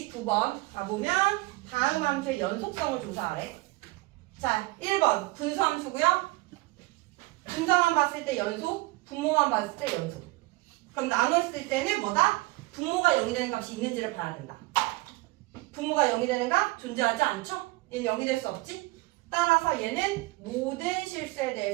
가보면 다음 함수의 연속성을 조사하래. 자, 1번 분수함수고요. 분자만 봤을 때 연속, 분모만 봤을 때 연속. 그럼 나눴을 때는 뭐다? 분모가 0이 되는 값이 있는지를 봐야 된다. 분모가 0이 되는 값 존재하지 않죠? 얘는 0이 될 수 없지? 따라서 얘는 모든 실수에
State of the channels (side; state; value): left; quieter; 21.8 dB